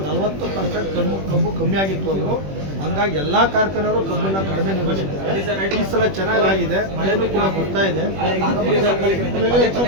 40% ಕಬ್ಬು ಕಮ್ಮಿ ಆಗಿತ್ತು ಅಂದರು. ಹಂಗಾಗಿ ಎಲ್ಲ ಕಾರ್ಖಾನೆಯವರು ಕಬ್ಬನ್ನು ಕಡಿಮೆ ನಿಲ್ಲಿಸಿದ್ದಾರೆ. ಈ ಸಲ ಚೆನ್ನಾಗಿದೆ, ಮಳೆನೂ ಕೂಡ ಬರ್ತಾ ಇದೆ.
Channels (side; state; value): left; late; 21 ms